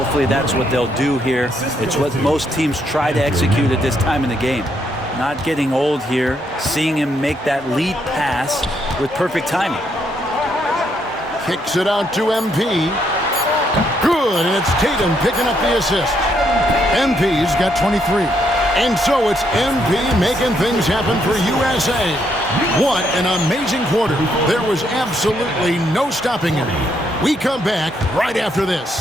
that's what they'll do here. It's what most teams try to execute at this time in the game. Not getting old here, seeing him make that lead pass with perfect timing. Kicks it out to MP. Good, and it's Tatum picking up the assist. MP's got 23. And so it's MP making things happen for USA. What an amazing quarter. There was absolutely no stopping him. We come back right after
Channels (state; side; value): normal; both; correlation 0.74